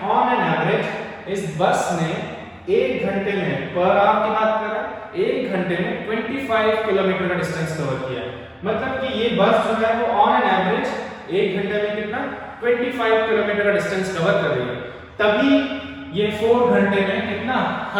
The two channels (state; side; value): identical; both; correlation 1.00